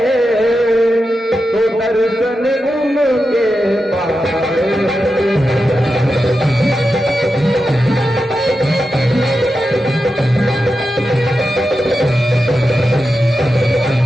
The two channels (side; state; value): both; normal; correlation 0.90